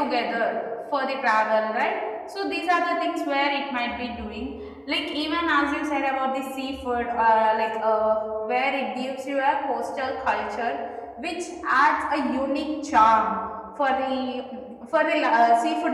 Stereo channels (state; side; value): identical; both; correlation 1.00